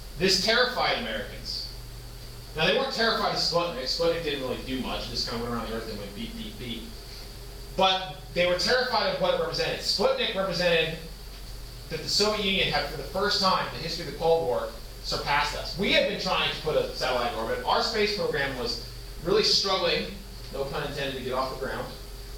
this terrified Americans. Now, they weren't terrified of Sputnik. Sputnik didn't really do much. It just kind of went around the Earth and went beep, beep, beep. But they were terrified of what it represented. Sputnik represented that the Soviet Union had, for the first time in the history of the Cold War, surpassed us. We had been trying to put a satellite in orbit. Our space program was really struggling, no pun intended, to get off the ground.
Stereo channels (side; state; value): both; identical; correlation 1.00